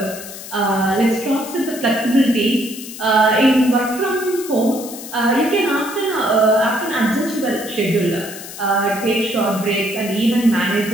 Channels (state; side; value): noise; left; hiss, 12 dB below the sound